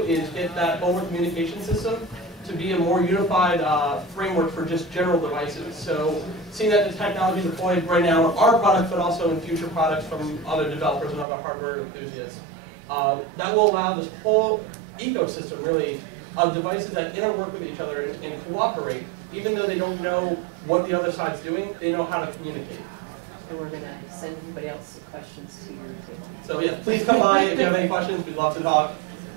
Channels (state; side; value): drops out; left; at 11.2 s